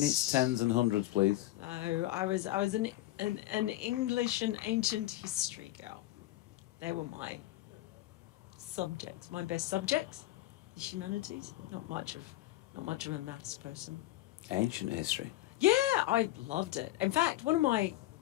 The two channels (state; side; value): quieter; right; 16.3 dB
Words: tens and hundreds, please. No, I was an English and ancient history girl. They were my subjects, my best subjects. The humanities. Not much of a maths person. Ancient history. Yeah, I loved it. In fact, one of my